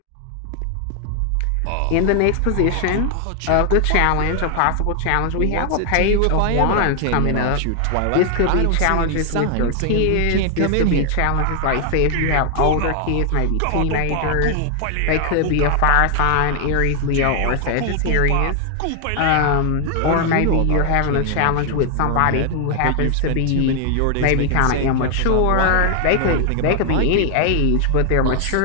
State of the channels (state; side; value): different; both; correlation 0.00